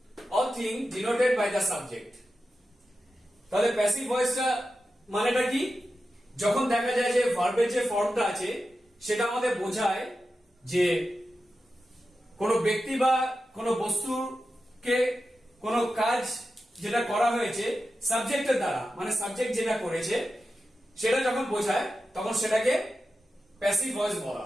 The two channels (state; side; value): normal; both; correlation 0.91